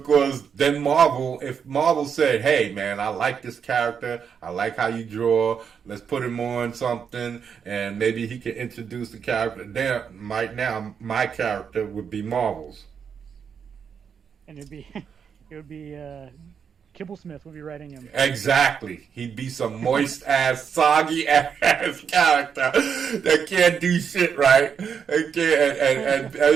then if Marvel said, hey man, I like this character, I like how you draw, let's put him on something, and maybe he can introduce the character, then right now my character would be Marvel's. And it would be Kibblesmith would be writing him. Exactly. He'd be some moist ass, soggy ass character that can't do shit right. And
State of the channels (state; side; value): quieter; left; 7.0 dB